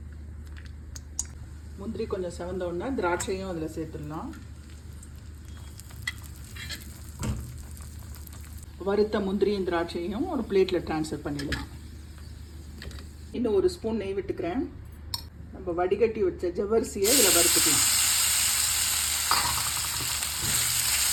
முந்திரி கொஞ்சம் செவந்தோடனே திராட்சையும் அதில் சேர்த்துடலாம். வறுத்த முந்திரியும் திராட்சையும் ஒரு பிளேட்டில் ட்ரான்ஸ்ஃபர் பண்ணிடலாம். இன்னும் 1 ஸ்பூன் நெய் விட்டுக்கிறேன். நம்ம வடிகட்டி வச்ச ஜவ்வரிசியை இதில் வறுத்துக்கலாம்.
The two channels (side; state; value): both; identical; correlation 1.00